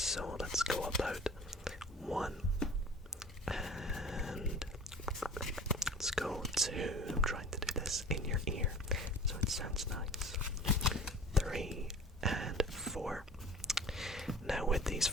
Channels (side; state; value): both; normal; correlation 0.41